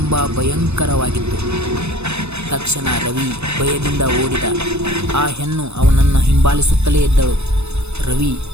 ಭಯಂಕರವಾಗಿತ್ತು. ತಕ್ಷಣ ರವಿ ಭಯದಿಂದ ಓಡಿದ. ಆ ಹೆಣ್ಣು ಅವನನ್ನು ಹಿಂಬಾಲಿಸುತ್ತಲೇ ಇದ್ದಳು. ರವಿ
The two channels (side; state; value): left; late; 0.81 ms